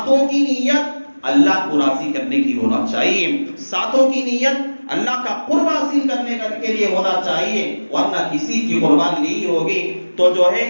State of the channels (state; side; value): inverted; both; correlation -1.00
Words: کی نیت اللہ کو راضی کرنے کی ہونا چاہیے، ساتوں کی نیت اللہ کا قرب حاصل کرنے کے لیے ہونا چاہیے، ورنہ کسی کی قربانی نہیں ہوگی۔ تو جو ہے